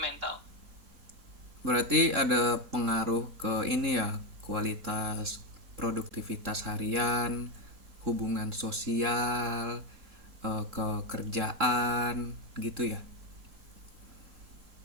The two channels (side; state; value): left; late; 3.7 ms